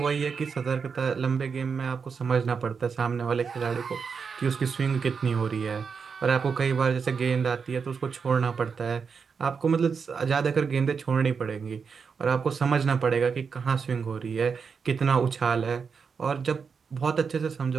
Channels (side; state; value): left; quieter; 5.8 dB